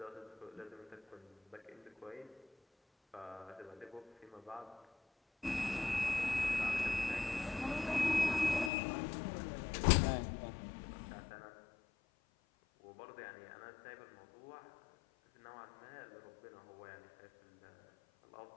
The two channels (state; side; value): drops out; right; at 8.7 s